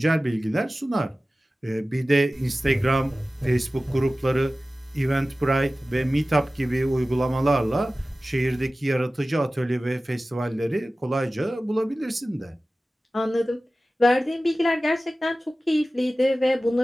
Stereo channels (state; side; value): normal; both; correlation 0.96